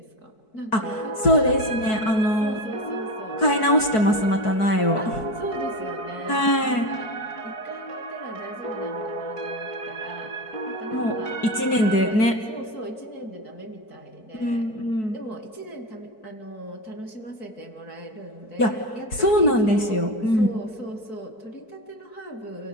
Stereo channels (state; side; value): late; right; 4.6 ms